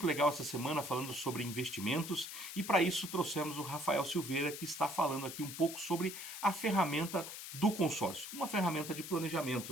legal essa semana falando sobre investimentos e para isso trouxemos o Rafael Silveira, que está falando aqui um pouco sobre a ferramenta do consórcio, uma ferramenta de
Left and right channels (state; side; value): noise; left; hiss, 9 dB below the sound